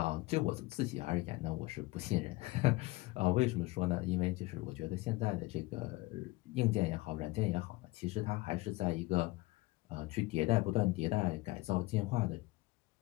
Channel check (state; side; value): quieter; right; 21.2 dB